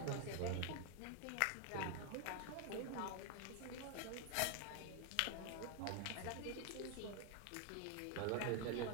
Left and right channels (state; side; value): different; both; correlation 0.01